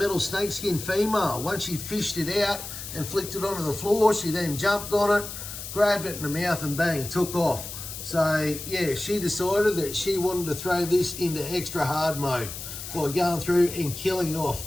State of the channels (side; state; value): left; noise; hiss, 9 dB below the sound